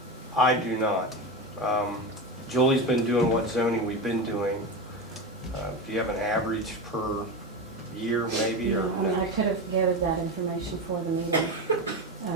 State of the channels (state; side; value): normal; both; correlation 0.20